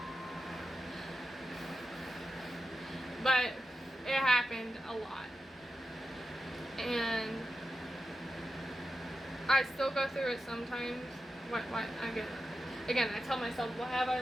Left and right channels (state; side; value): normal; both; correlation 0.90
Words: But it happened a lot. And I still go through it sometimes. What, again, I tell myself, what have I